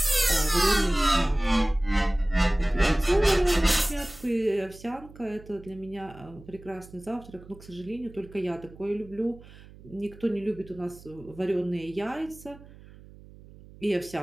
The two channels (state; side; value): noise; right; hum, 20 dB below the sound